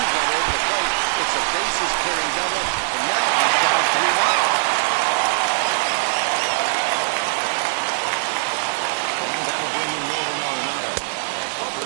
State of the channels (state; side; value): silent; left; 59 dB below the other